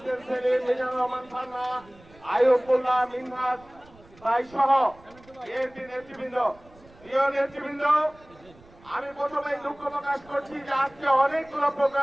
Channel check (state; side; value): noise; right; rumble, 25 dB below the sound